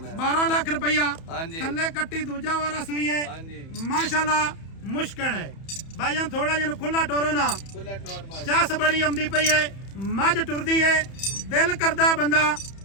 12 ਲੱਖ ਰੁਪਇਆ। ਹਾਂਜੀ ਥੱਲੇ ਕੱਟੀ ਦੂਜਾ ਵਾਰਾ ਸੂਈ ਹੈ ਹਾਂਜੀ ਮਾਸ਼ਾਅੱਲਾ। ਮੁਸ਼ਕਲ ਹੈ ਭਾਈਜਾਨ, ਥੋੜਾ ਜਿਹਾ ਖੁੱਲਾ ਟੋਰੋ ਨਾ। ਖੁੱਲਾ ਟੋਰ ਮਾਈ ਚਾਸ ਬੜੀ ਆਉਂਦੀ ਪਈ ਹੈ, ਮੱਝ ਟੁਰਦੀ ਹੈ, ਦਿਲ ਕਰਦਾ ਬੰਦਾ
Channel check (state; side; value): late; right; 31 ms